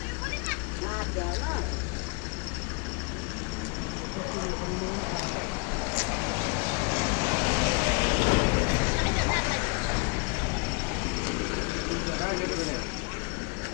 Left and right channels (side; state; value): right; quieter; 33.2 dB